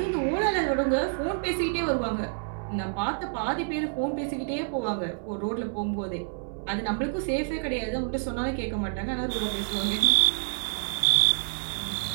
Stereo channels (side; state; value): left; silent; 58 dB below the other